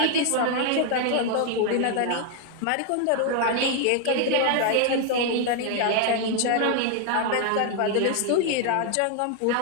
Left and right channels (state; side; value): different; both; correlation 0.00